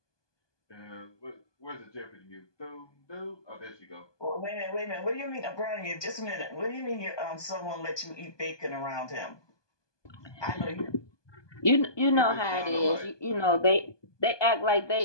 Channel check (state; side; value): late; right; 1.2 ms